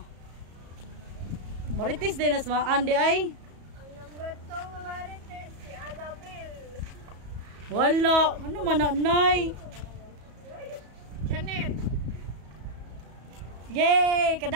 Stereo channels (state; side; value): late; left; 34 ms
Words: Marites din as mga andi ay. Ang number 2 nga Marites, si Annabel. Wala. Ano mananay? Janet. Yay!